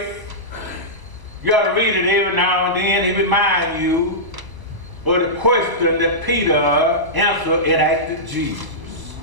you got to read it every now and then. It reminds you of the question that Peter answered and asked Jesus.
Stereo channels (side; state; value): left; late; 1.0 ms